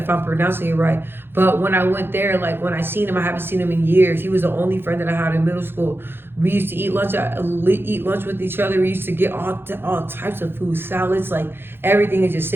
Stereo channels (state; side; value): late; left; 0.10 ms